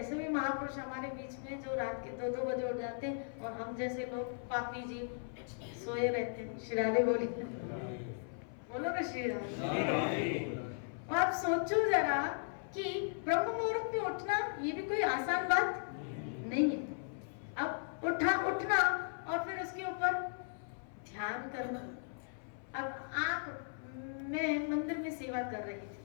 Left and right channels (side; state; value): right; silent; 53 dB below the other